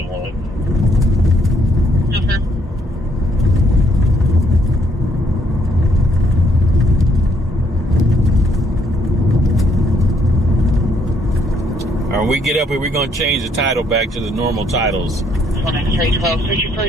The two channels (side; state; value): both; normal; correlation 0.69